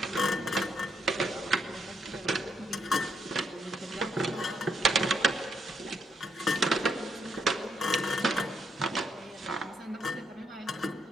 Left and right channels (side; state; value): both; normal; correlation 0.76